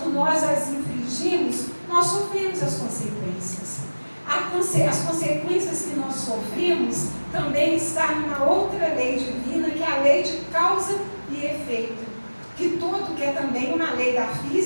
nós as infringimos, nós sofremos as consequências. As consequências que nós sofremos também está numa outra lei divina, que é a lei de causa e efeito. Que é também uma lei da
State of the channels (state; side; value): inverted; both; correlation -1.00